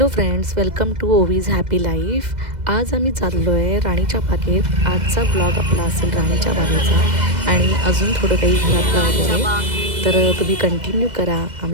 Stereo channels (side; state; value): left; late; 2.0 ms